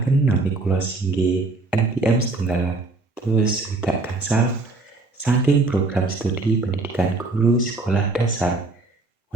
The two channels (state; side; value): quieter; left; 3.3 dB